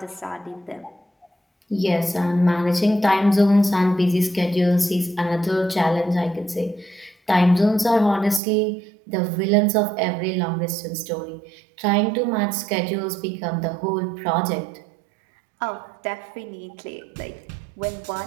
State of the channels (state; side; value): drops out; left; at 8.4 s